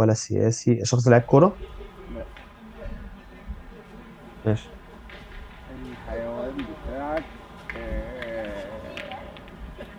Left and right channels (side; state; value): both; identical; correlation 1.00